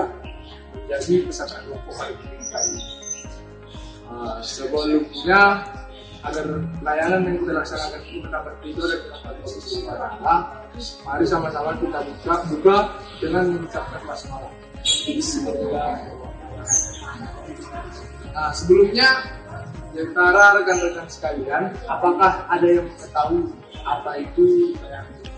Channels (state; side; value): identical; both; correlation 1.00